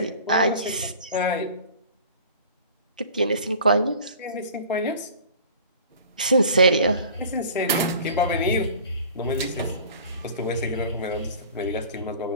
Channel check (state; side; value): inverted; both; correlation -0.44